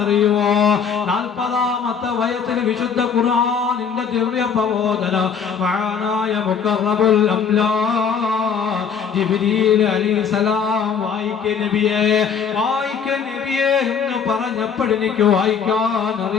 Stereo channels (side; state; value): right; quieter; 6.6 dB